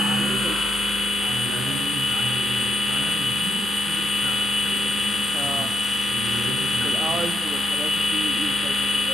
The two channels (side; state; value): both; normal; correlation 0.77